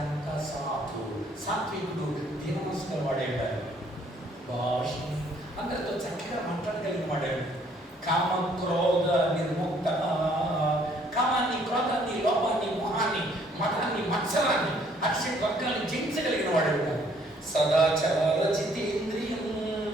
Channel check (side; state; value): both; normal; correlation 0.63